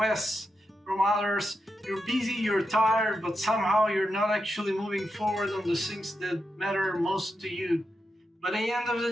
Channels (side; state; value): both; normal; correlation 0.86